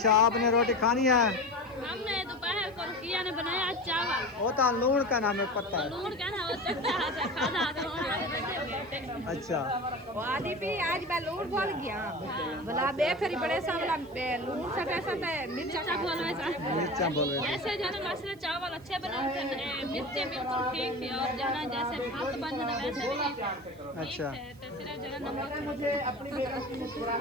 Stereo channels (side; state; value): right; noise; hiss, 28 dB below the sound